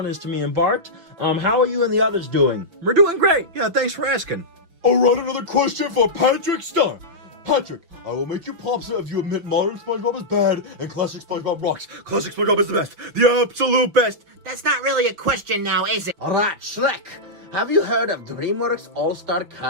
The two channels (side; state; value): left; late; 5.9 ms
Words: is to me and Bart. How are you and the others doing? We're doing great. Yeah, thanks for asking. All right, another question for Patrick Starr. Patrick, I will make you popsa if you admit modern SpongeBob is bad and classic SpongeBob rocks. Classic SpongeBob is the best. The absolute best. That's not really a question now, is it? All right, Shrek. Have you heard of DreamWorks All-Star